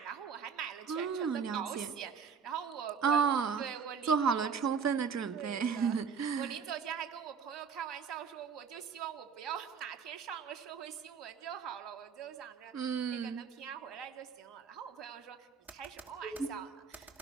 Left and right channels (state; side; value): quieter; left; 6.3 dB